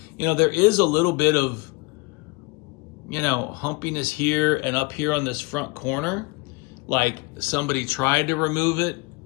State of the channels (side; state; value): right; quieter; 26.4 dB